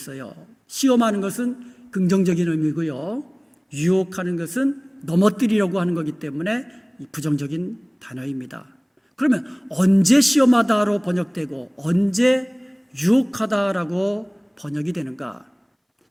시험하는 것은 긍정적인 의미고요, 유혹하는 것은 넘어뜨리려고 하는 거기 때문에 부정적인 단어입니다. 그러면 언제 시험하다로 번역되고 언제 유혹하다라고 번역이 되는가?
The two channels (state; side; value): identical; both; correlation 1.00